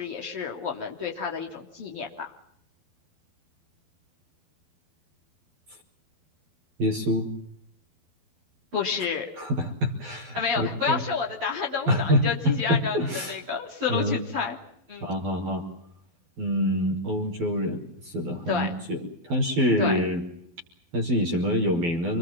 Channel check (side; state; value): left; late; 12 ms